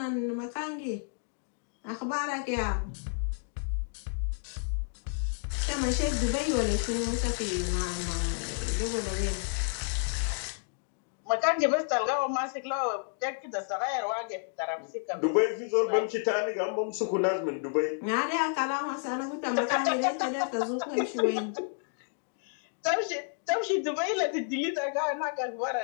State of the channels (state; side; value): silent; right; digital silence